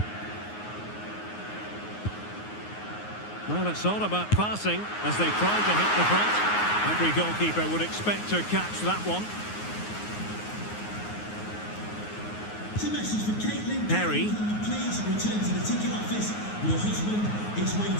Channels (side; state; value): right; late; 9.5 ms